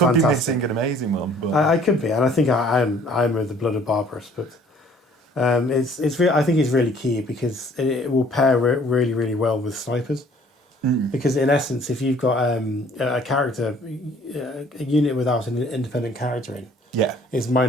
An amazing one. But... I could be, and I think I'm with the blood of Barbarous, but I think it's really key because it will pair really really well with snipers. Because in essence, if you've got a character, a unit without an independent character in, it's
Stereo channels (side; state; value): both; normal; correlation 0.56